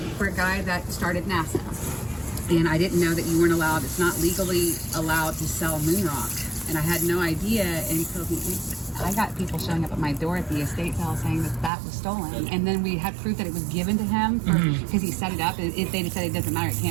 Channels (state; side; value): drops out; left; at 11.7 s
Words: for a guy that started NASA. And I didn't know that you weren't allowed, it's not legally allowed to sell moon rock. And I had no idea until I got people showing up at my door at the estate sale saying that was stolen. And then we had proof that it was given to him because he set it up. And if they said it doesn't matter, it